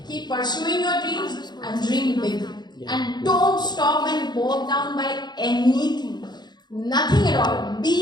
Keep pursuing your dreams and dream big. And don't stop and bog down by anything. Nothing at all.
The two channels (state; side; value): late; right; 0.21 ms